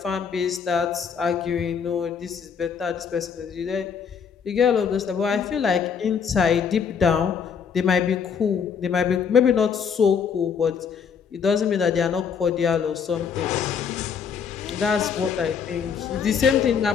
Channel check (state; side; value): quieter; right; 6.8 dB